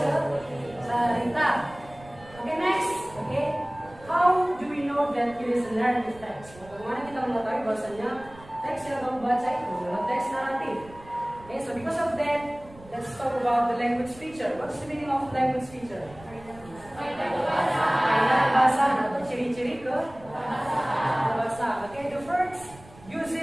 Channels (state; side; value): noise; right; rumble, 21 dB below the sound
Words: cerita. Okay, next. Okay, how do we know that it is a narrative text? Bagaimana kita mengetahui bahwasanya teks yang kamu baca itu adalah teks naratif? Okay, so because of that, let's talk about the language feature. What's the meaning of language feature? Bahasa atau ciri-ciri ke bahasa. Okay, the first